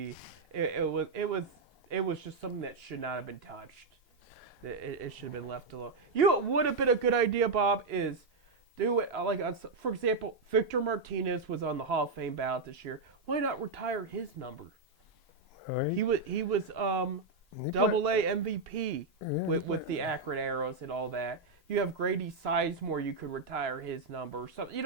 It was just something that should not have been touched. It should have been left alone. What would have been a good idea, Bob, is do it like, for example, Victor Martinez was on the Hall of Fame ballot this year. Why not retire his number? Right. He was Double-A MVP with the Akron Arrows and all that. You have Grady Sizemore. You could retire his number or something.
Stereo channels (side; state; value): left; quieter; 3.9 dB